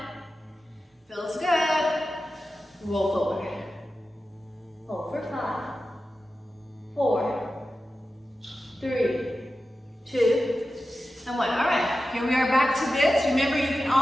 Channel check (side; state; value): both; normal; correlation 0.93